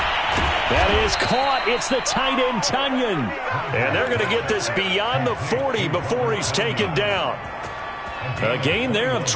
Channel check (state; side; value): identical; both; correlation 1.00